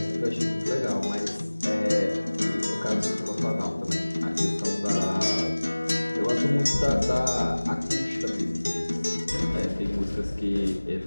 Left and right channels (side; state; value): both; inverted; correlation -1.00